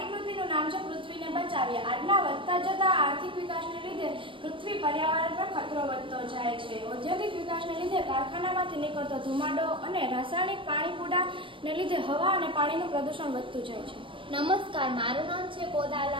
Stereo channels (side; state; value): left; late; 0.25 ms